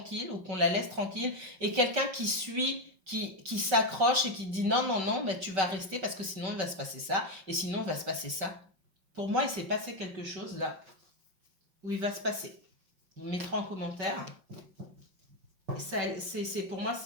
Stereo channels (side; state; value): left; late; 5.3 ms